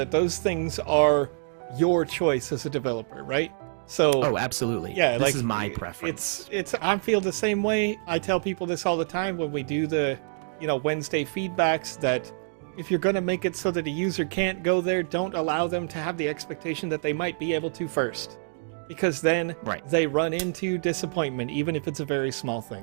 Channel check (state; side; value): silent; left; digital silence